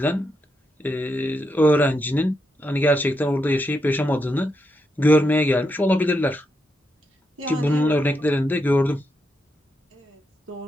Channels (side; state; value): both; normal; correlation 0.82